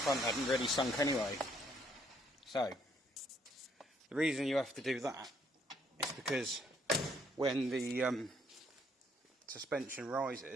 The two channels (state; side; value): normal; both; correlation 0.68